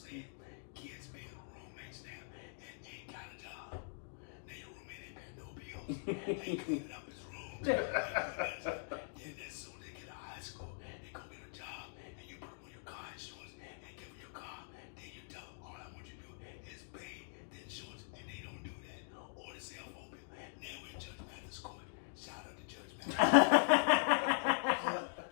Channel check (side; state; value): right; silent; digital silence